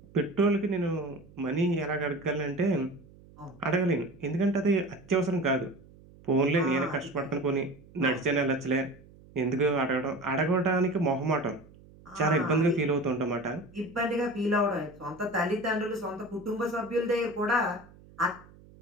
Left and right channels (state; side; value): noise; right; hum, 23 dB below the sound